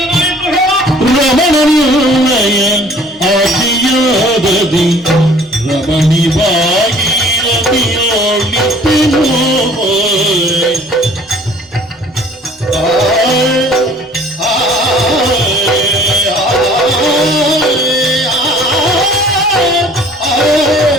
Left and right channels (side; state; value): both; normal; correlation 0.53